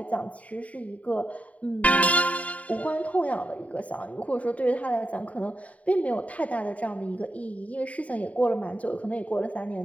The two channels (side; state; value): right; late; 0.068 ms